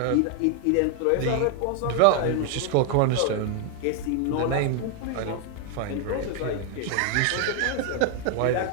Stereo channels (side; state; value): both; different; correlation 0.00